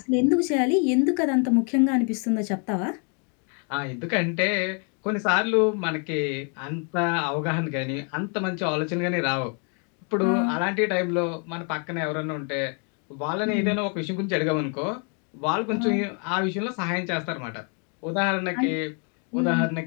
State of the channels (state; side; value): quieter; right; 38.9 dB